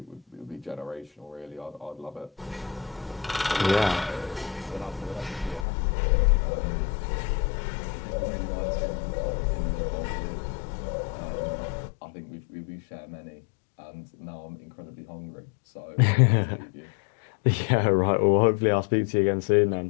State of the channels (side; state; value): right; drops out; at 5.7 s